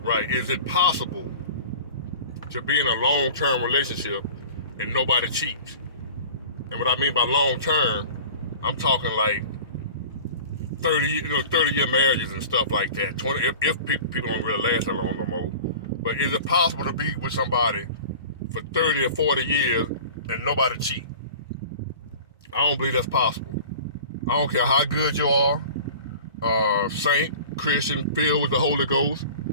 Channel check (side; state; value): both; inverted; correlation -0.40